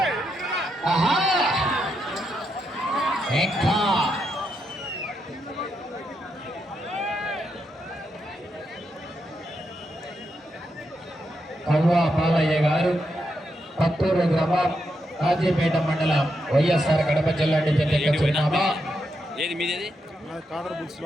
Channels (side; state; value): both; normal; correlation 0.82